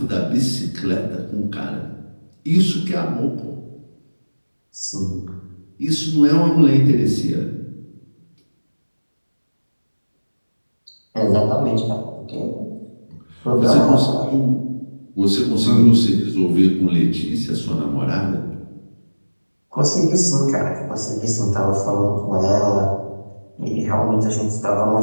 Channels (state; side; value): inverted; both; correlation -1.00